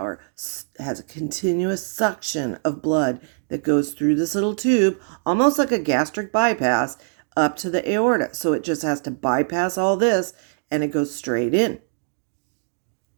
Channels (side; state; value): left; silent; digital silence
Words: has a continuous suction of blood that goes through this little tube, almost like a gastric bypass, up to the aorta. So it just has to bypass all this and it goes straight in.